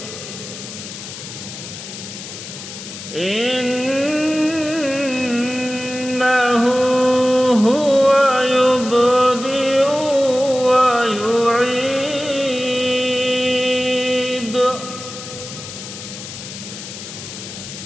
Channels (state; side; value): noise; left; hiss, 11 dB below the sound